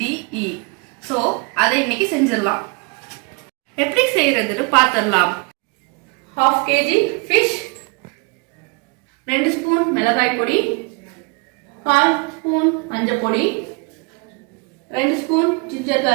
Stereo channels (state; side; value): quieter; left; 31.5 dB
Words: D, E. So அதை இன்னைக்கு செஞ்சிடலாம். எப்படி செய்யறதுன்னு பார்த்துடலாம். 1/2 kg ஃபிஷ், 2 ஸ்பூன் மிளகாய் பொடி, 1/4 ஸ்பூன் மஞ்சள் பொடி, 2 spoon ginger